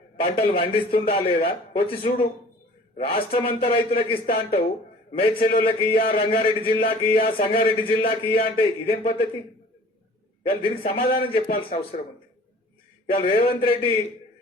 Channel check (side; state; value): both; normal; correlation 0.48